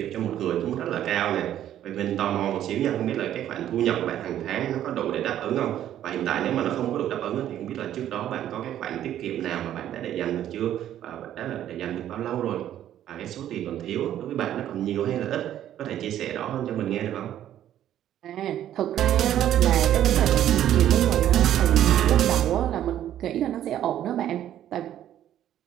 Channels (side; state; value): left; quieter; 11.5 dB